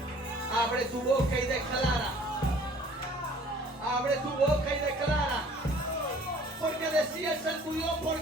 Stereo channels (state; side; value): normal; both; correlation 0.52